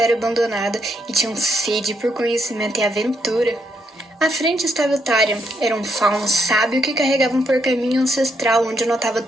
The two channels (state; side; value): normal; both; correlation 0.77